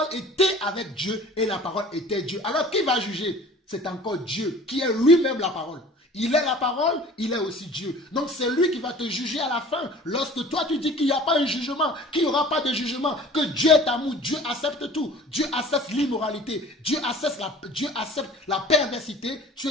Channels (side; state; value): both; normal; correlation 0.46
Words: était avec Dieu et la parole était Dieu. Alors qui va juger? C'est encore Dieu qui est lui-même la parole. Il est la parole, il est aussi Dieu. Donc c'est lui qui va te juger à la fin. Lorsque toi tu dis qu'il n'y a pas un jugement, qu'il n'y aura pas de jugement, que Dieu est amour, Dieu accepte tout. Dieu accepte l'immoralité, Dieu accepte la perversité. Tu